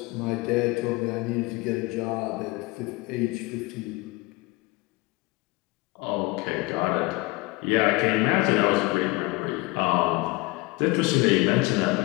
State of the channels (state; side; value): quieter; right; 23.5 dB